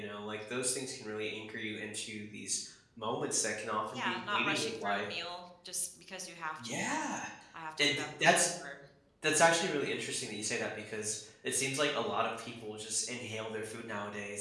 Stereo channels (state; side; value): identical; both; correlation 1.00